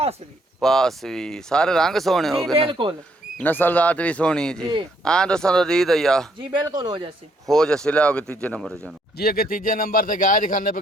भी पास भी सारे रंग सोने हो जी गए ना। बिल्कुल नस्ल जात भी सोनी है जी जी। हाँ दोस्तों तो दी दैया जी बिल्कुल हो जैसे हो जैसे ले आओगे तीजे नंबर जानो जी अगे तीजे नंबर ते गाय दिखाने पे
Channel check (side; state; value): both; normal; correlation 0.70